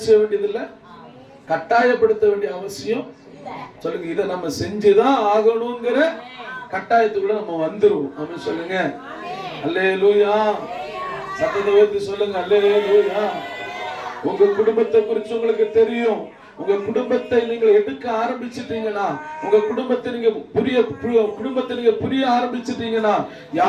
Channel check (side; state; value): both; identical; correlation 1.00